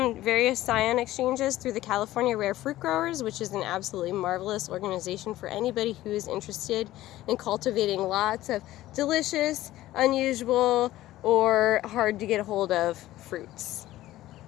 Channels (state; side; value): quieter; right; 15.4 dB